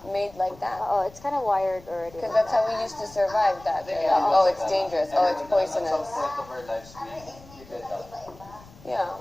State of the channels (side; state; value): left; noise; rumble, 22 dB below the sound